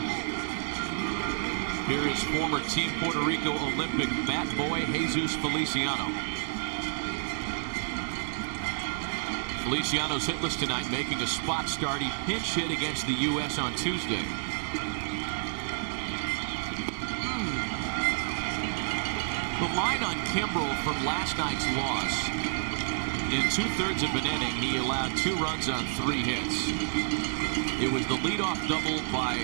Here is former Team Puerto Rico Olympic bat boy Jesus Feliciano. Feliciano's hitless tonight, making a spot start. He pinch hit against the U.S. on Tuesday. The line on Kimbrel from last night's loss. In 2/3 of an inning, he allowed 2 runs on 3 hits. It was the leadoff double by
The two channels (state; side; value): silent; left; digital silence